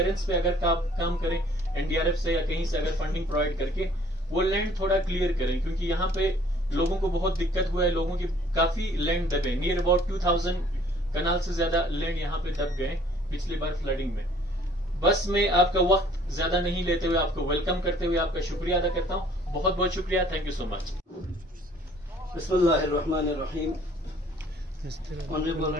पे अगर काम करें एनडीआरएफ से या कहीं से अगर फंडिंग प्रोवाइड करके वो लैंड थोड़ा क्लियर करें, क्योंकि यहाँ पे लोगों को बहुत दिक्कत हुआ है। लोगों की काफी लैंड दबे, नियर अबाउट 2000 कनाल से ज्यादा लैंड यहाँ पे दब गए पिछली बार फ्लडिंग में। बस मैं आपका वक्त ज्यादा नहीं लेते हुए आपको वेलकम करते हुए आपका शुक्रिया अदा करता हूँ। बहुत बहुत शुक्रिया, थैंक यू सो मच। बिस्मिल्लाहिर्रहमानिर्रहीम। ऑनरेबल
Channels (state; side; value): normal; both; correlation 0.56